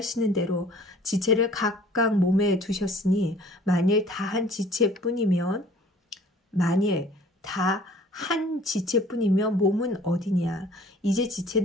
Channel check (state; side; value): normal; both; correlation 0.52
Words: 대로 지체를 각각 몸에 두셨으니 만일 다 한 지체뿐이면 몸은 어디냐. 이제